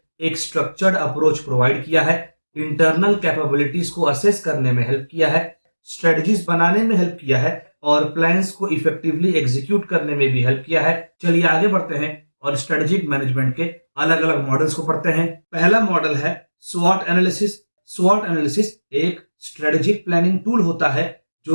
एक स्ट्रक्चर्ड अप्रोच प्रोवाइड किया है, इंटरनल कैपेबिलिटीज को असेस करने में हेल्प किया है, स्ट्रेटजीज बनाने में हेल्प किया है और प्लान्स को इफेक्टिवली एग्जीक्यूट करने में भी हेल्प किया है। चलिए आगे बढ़ते हैं और स्ट्रेटेजिक मैनेजमेंट के अलग अलग मॉडल्स को पढ़ते हैं। पहला मॉडल है स्वॉट एनालिसिस। स्वॉट एनालिसिस एक स्ट्रेटेजिक प्लानिंग टूल होता है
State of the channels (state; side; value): inverted; both; correlation -1.00